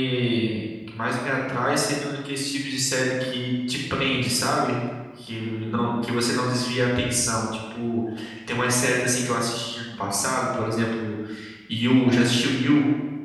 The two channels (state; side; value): identical; both; correlation 1.00